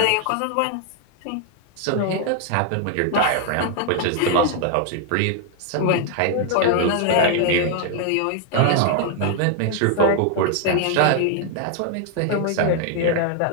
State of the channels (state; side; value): different; both; correlation 0.00